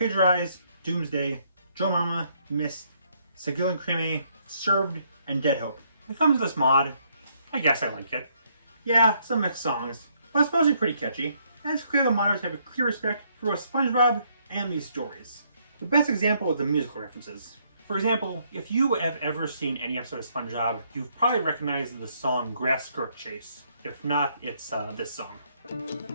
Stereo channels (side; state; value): both; inverted; correlation -0.70